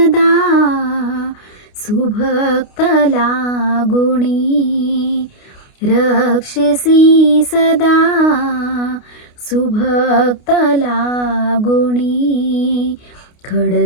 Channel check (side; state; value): right; late; 29 ms